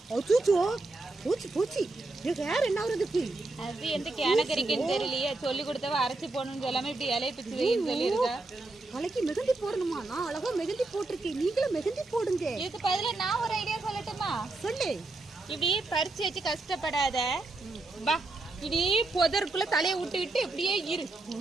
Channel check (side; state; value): left; quieter; 3.1 dB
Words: பூச்சி ஹேர் என்ன ஆகுறதுக்கு? அது எந்த கேனகரிக்குன்னு தெரியலையே. சொல்லி கொடுத்தவ அரைச்சி போடணும்னு சொல்லாம இப்படி இலையை பிச்சு வைன்னு சொல்லியிருக்கா. தலைக்கு மெகந்தி போடணுமா? நான் அழகா மெகந்தி போட்டிருக்கேன், நீங்களும் மெகந்தி போடுங்க. இதுக்கு பதிலா நான் ஒரு ஐடியா சொல்லட்டுமா? சொல்லு. இப்படி பறிச்சு வச்சு கஷ்டப்படாத, வா இப்படி புதருக்குள்ள தலையை விட்டுக்கிட்டு இப்படியே இரு.